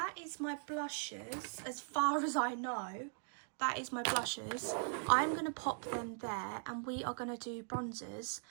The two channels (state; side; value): silent; left; digital silence